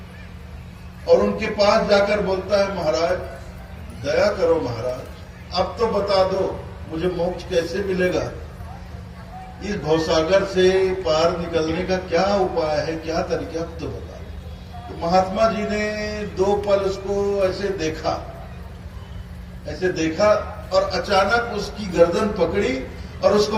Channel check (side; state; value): both; identical; correlation 1.00